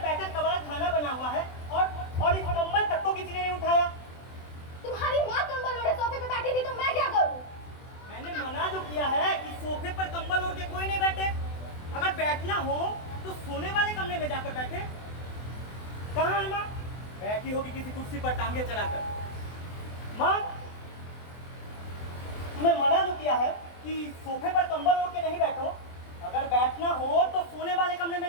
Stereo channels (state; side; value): late; right; 24 ms